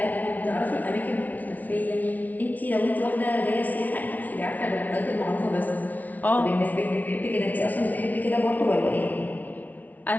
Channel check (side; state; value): right; late; 0.076 ms